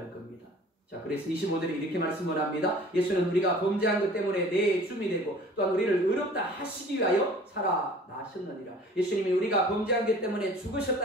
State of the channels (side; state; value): both; normal; correlation 0.47